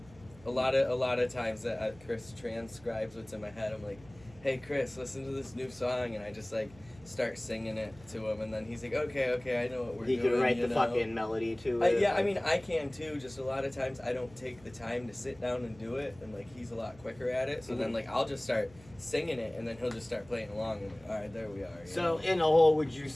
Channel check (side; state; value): right; noise; hum, 23 dB below the sound